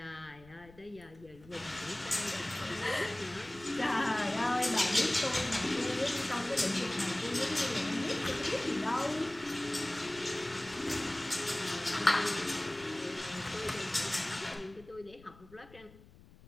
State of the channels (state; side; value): noise; left; rumble, 23 dB below the sound